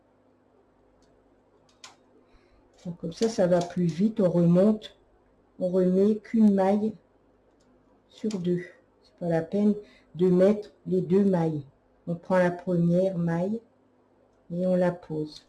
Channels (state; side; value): identical; both; correlation 1.00